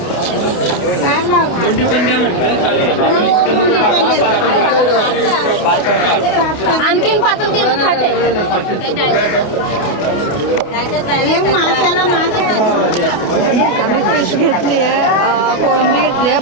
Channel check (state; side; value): late; right; 29 ms